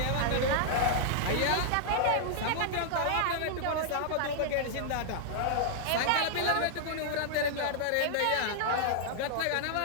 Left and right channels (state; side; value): different; both; correlation -0.01